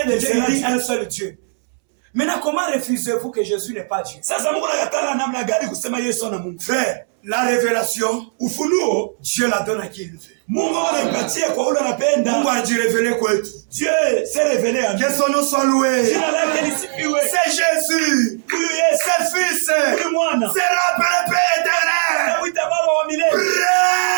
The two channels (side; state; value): left; silent; 67 dB below the other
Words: de dieux? Il dit un seul Dieu. Maintenant, comment refusez-vous que Jésus n'est pas Dieu? Frère, la révélation, Dieu la donne à qui il veut. Mungu a dit révéler quoi? Dieu s'est révélé à nous. Que son nom soit loué. C'est Jésus. C'est le Fils. C'est le Père éternel.